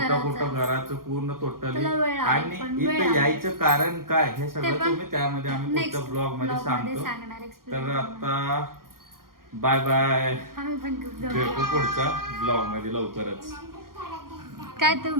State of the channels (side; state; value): left; late; 0.92 ms